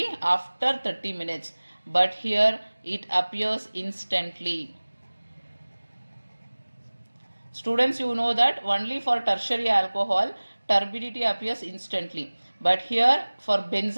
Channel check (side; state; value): both; inverted; correlation -1.00